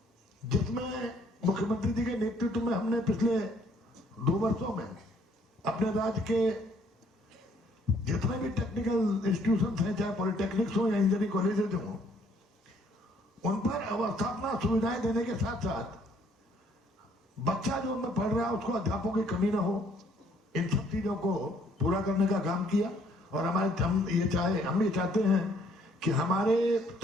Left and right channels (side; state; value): both; normal; correlation 0.64